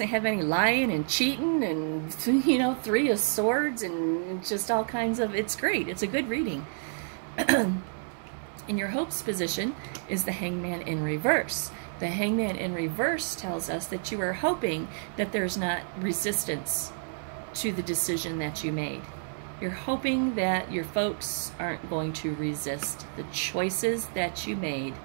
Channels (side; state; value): left; silent; digital silence